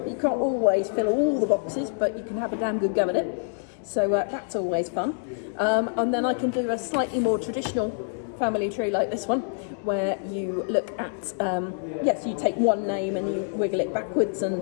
You can't always fill all the boxes, but you can have a damn good go at it. So that's always fun. And then I can do a slightly more traditional family tree like this one, where you look at, yes, you take one name and you wiggle it backwards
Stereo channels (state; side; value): silent; right; digital silence